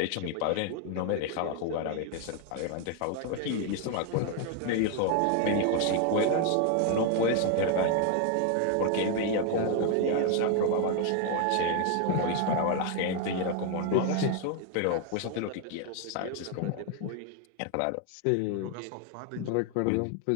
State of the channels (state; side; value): different; both; correlation 0.01